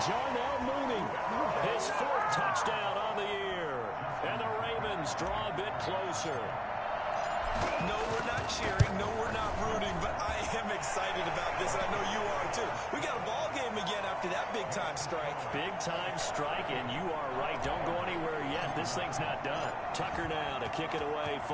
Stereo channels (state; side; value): identical; both; correlation 1.00